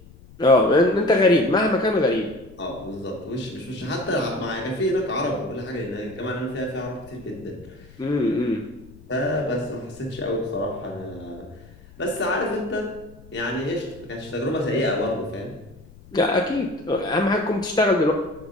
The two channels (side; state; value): left; noise; rumble, 22 dB below the sound